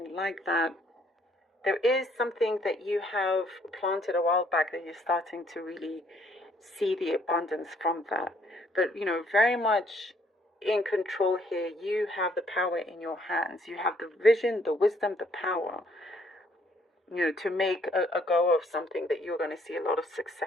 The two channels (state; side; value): normal; both; correlation 0.66